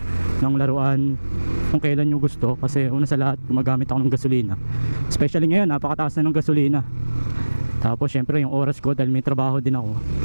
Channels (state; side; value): inverted; both; correlation -1.00